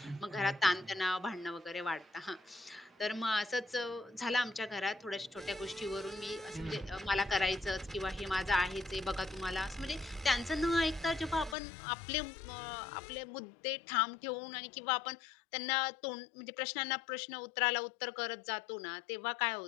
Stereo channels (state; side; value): drops out; right; at 11.6 s